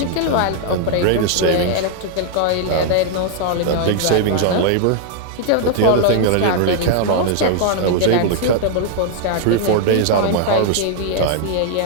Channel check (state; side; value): different; both; correlation 0.00